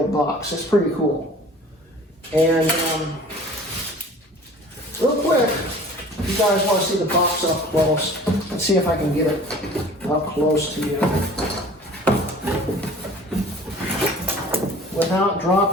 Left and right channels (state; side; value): normal; both; correlation 0.46